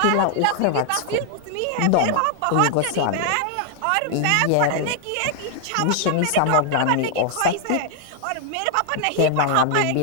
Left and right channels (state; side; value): different; both; correlation 0.00